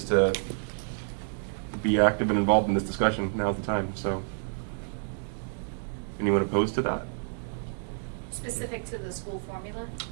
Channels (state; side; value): silent; left; digital silence